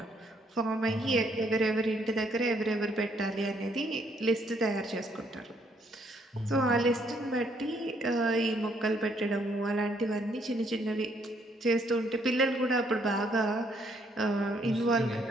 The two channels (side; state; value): both; normal; correlation 0.69